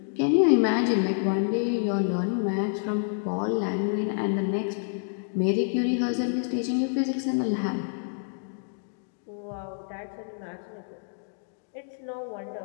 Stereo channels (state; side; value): silent; right; digital silence